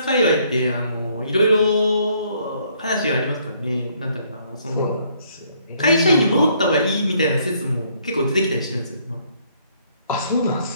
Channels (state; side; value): inverted; both; correlation -0.66